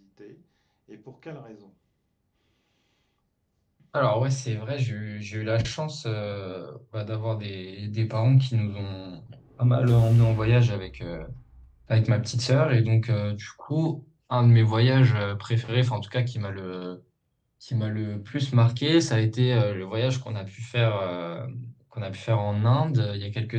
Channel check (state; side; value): identical; both; correlation 1.00